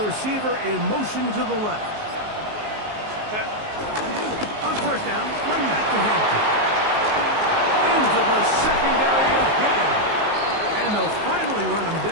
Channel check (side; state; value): left; late; 19 ms